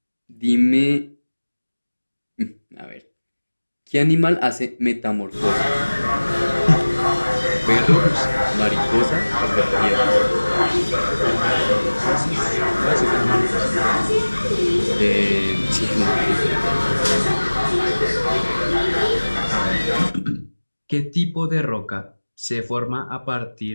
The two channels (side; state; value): both; inverted; correlation -1.00